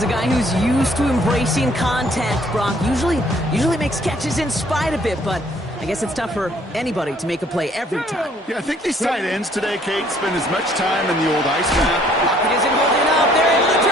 a guy who's used to embracing contact, Brock. Usually makes catches in spite of it, but I guess it's tough for anybody to make a play every time. Yeah, I think these tight ends today, Kate, spend as much time in the old ice map. Pocket isn't holding up. They're able to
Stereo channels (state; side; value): normal; both; correlation 0.61